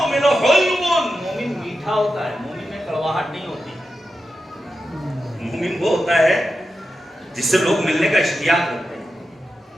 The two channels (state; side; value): normal; both; correlation 0.90